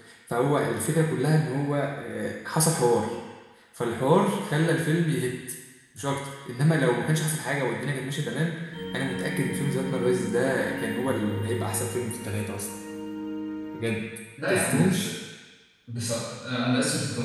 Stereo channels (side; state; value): both; identical; correlation 1.00